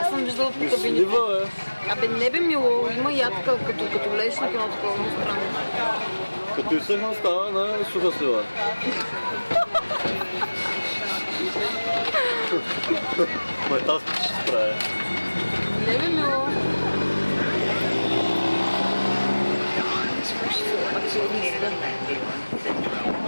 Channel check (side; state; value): both; inverted; correlation -1.00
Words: Аз съм виждала по кабините. Слива, Абе, не бе мило. Има ядка, като влезеш на едно такова странно. Като изсъхна става на суха слива. Ма тази ще се справя. Не бе мило.